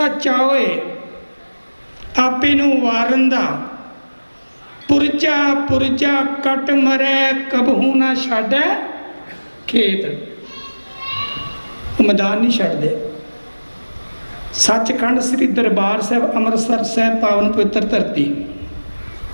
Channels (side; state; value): both; inverted; correlation -1.00